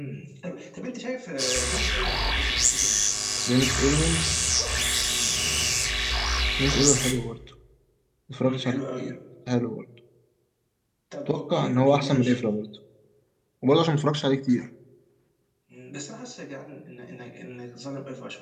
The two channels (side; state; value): both; identical; correlation 1.00